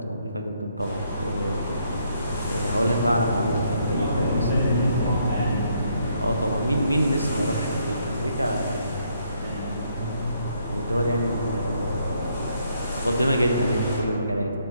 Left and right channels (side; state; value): both; inverted; correlation -0.71